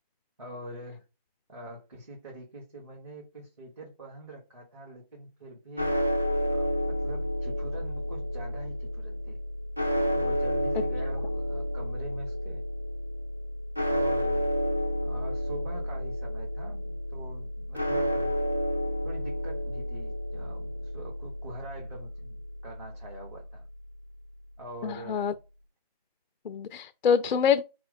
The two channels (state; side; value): inverted; both; correlation -0.60